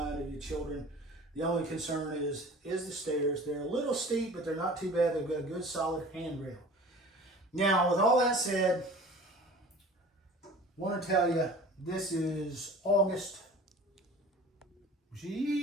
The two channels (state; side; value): normal; both; correlation 0.43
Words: of your children. The only concern is the stairs. They're a little steep, but they're not too bad. They've got a good solid handrail. Now, with all that said, I want to tell you, this is August.